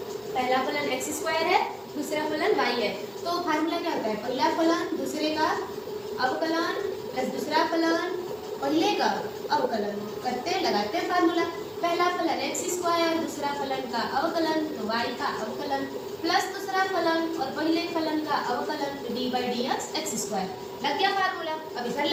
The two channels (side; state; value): both; identical; correlation 1.00